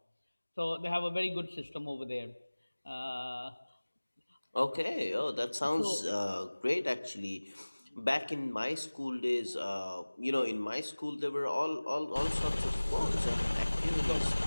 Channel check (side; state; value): both; inverted; correlation -1.00